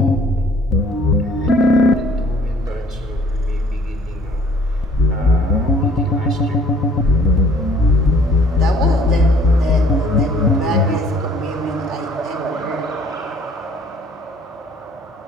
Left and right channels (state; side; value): normal; both; correlation 0.56